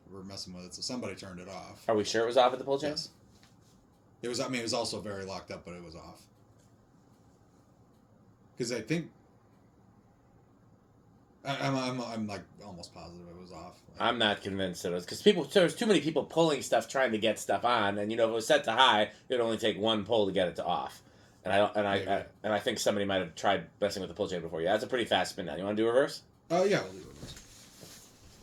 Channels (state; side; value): identical; both; correlation 1.00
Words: were messing with it, so somebody turned it off. Are we sure it was off at the pull chain? Yes. It was, it was also very locked up, but it was off. Because I think... I'm like almost positive it was off. I'm not convinced it was, because there's too many people pulling stuff, trying to get stuff on, and if it was set to high, it'd only take one pull to get it to off. And I think somebody might have tried messing with the pull chain before. Yeah, that's a pretty fast spin down. You want to do reverse? Oh yeah, we'll do reverse.